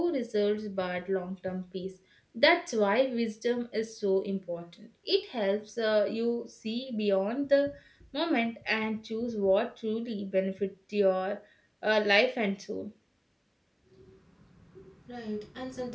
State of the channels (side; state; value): both; identical; correlation 1.00